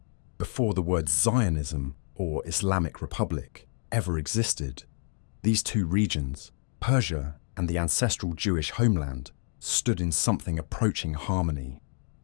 before the words Zionism or Islamic Republic ever existed, these two regions, Persia and the ancestral Jewish homeland, stood in something approaching harmony.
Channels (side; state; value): right; silent; digital silence